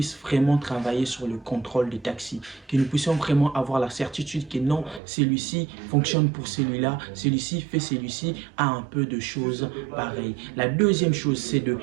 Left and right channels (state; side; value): drops out; left; at 5.0 s